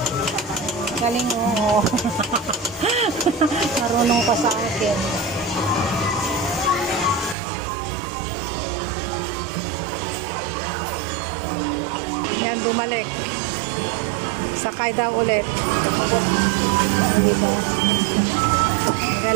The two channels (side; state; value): left; drops out; at 7.4 s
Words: Galing mo. Marunong pa sa akin. Yan, bumalik. Sakay daw ulit. Diba?